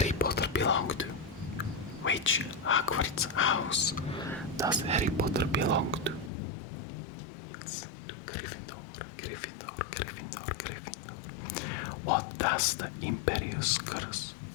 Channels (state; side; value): drops out; right; at 6.3 s